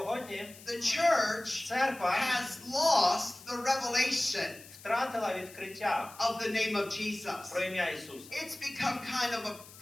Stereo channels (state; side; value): noise; left; hiss, 19 dB below the sound